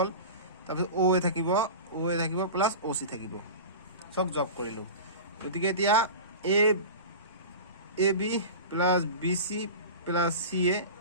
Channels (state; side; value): inverted; both; correlation -0.31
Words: তাৰপিছত অ এ থাকিব প্লাছ অ চি থাকিব, চব যোগ কৰিলোঁ। গতিকে এতিয়া A B plus B C plus C A